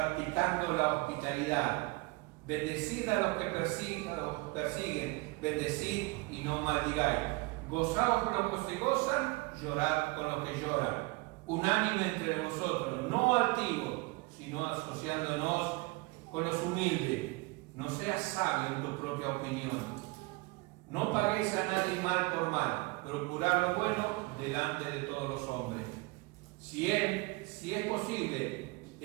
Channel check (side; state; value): left; quieter; 24.2 dB